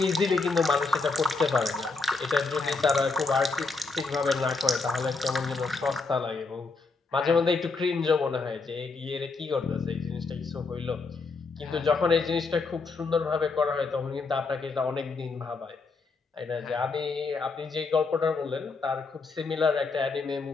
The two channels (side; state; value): right; quieter; 4.0 dB